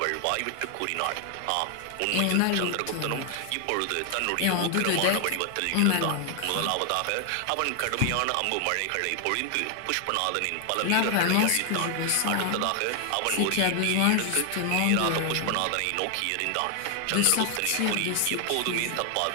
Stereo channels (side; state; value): both; different; correlation 0.00